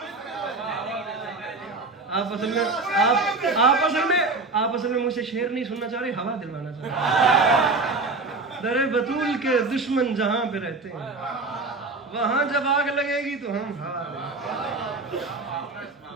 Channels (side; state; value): left; quieter; 3.7 dB